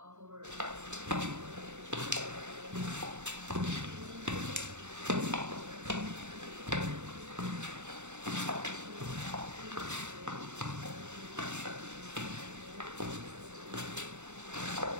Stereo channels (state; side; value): late; left; 0.83 ms